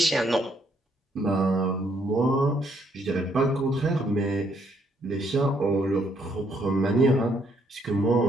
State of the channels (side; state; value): both; normal; correlation 0.71